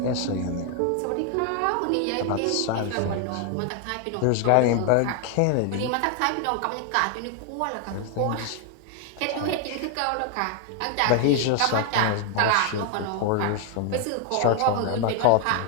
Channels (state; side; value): different; both; correlation 0.00